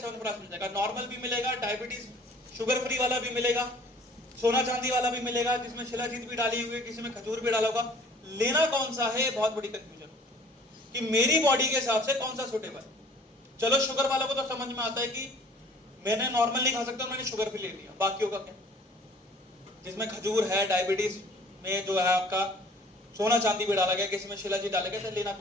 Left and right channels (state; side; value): normal; both; correlation 0.52